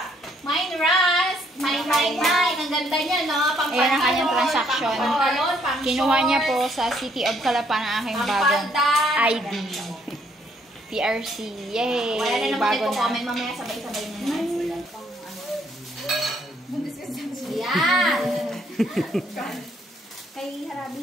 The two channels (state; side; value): normal; both; correlation 0.68